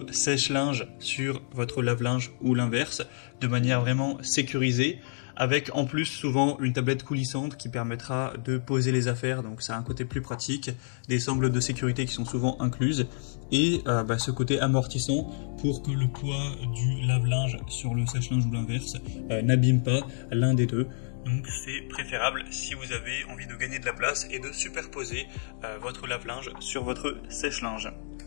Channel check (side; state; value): right; silent; digital silence